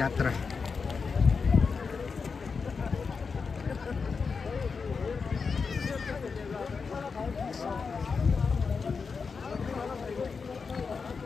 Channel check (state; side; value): quieter; right; 5.2 dB